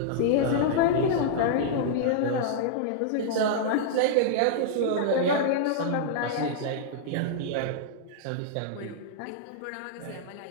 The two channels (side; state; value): both; different; correlation -0.02